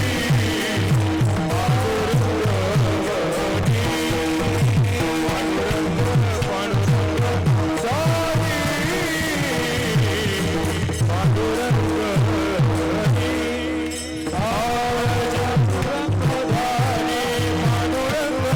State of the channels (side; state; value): both; identical; correlation 1.00